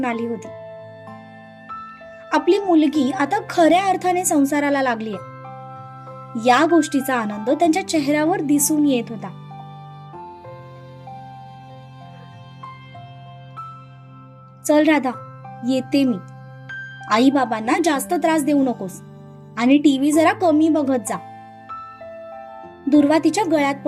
आली होती. आपली मुलगी आता खऱ्या अर्थाने संसाराला लागली आहे, या गोष्टीचा आनंद त्यांच्या चेहऱ्यावर दिसून येत होता. चल राधा, येते मी. आई बाबांना जास्त त्रास देऊ नकोस आणि टीव्ही जरा कमी बघत जा. दुर्वा तिच्या गळ्यात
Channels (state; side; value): identical; both; correlation 1.00